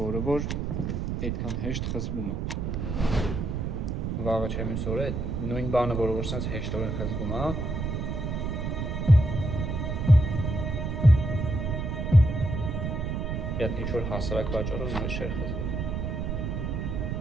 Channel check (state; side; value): noise; right; rumble, 2 dB below the sound